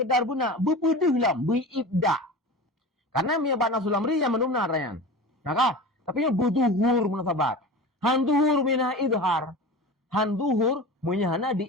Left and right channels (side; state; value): both; normal; correlation 0.32